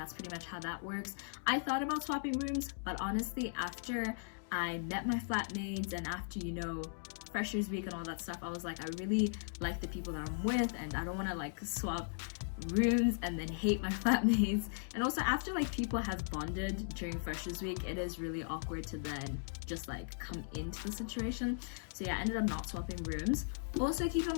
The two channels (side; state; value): right; silent; digital silence